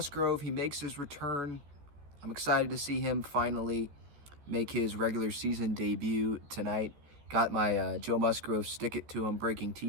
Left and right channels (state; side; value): late; left; 14 ms